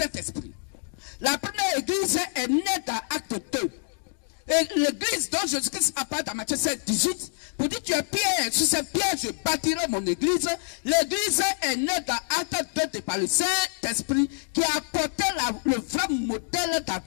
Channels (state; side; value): silent; right; digital silence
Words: La première église est née dans Acte 2. Et l'église dont Jésus-Christ apparaît dans Matthieu 7, 18, pour dire tu es Pierre, sur cette pierre je bâtirai mon église. L'église est née dans Acte 2 par le Saint-Esprit qui a apporté le vrai modèle